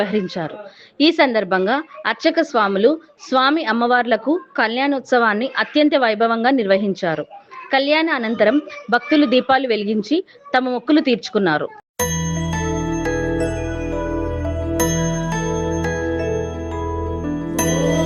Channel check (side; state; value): both; identical; correlation 1.00